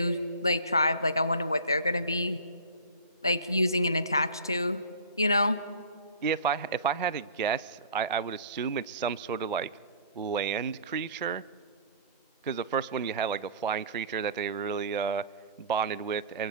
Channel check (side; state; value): both; inverted; correlation -0.41